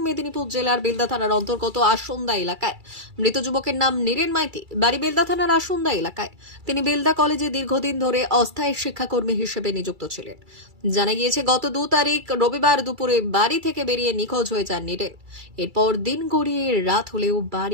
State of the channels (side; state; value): left; late; 2.3 ms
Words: মেদিনীপুর জেলার বেলদা থানার অন্তর্গত আসন্দা এলাকায়। মৃত যুবকের নাম নীরেন মাইতি, বাড়ি বেলদা থানার আসন্দা এলাকায়। তিনি বেলদা কলেজে দীর্ঘদিন ধরে অস্থায়ী শিক্ষাকর্মী হিসেবে নিযুক্ত ছিলেন। জানা গিয়েছে, গত 2 তারিখ রবিবার দুপুরে বাড়ি থেকে বেরিয়ে নিখোঁজ হয়ে যান নীরেন। এরপর দিন গড়িয়ে রাত হলেও